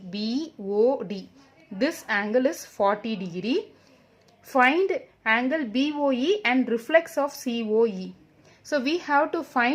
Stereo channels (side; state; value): both; identical; correlation 1.00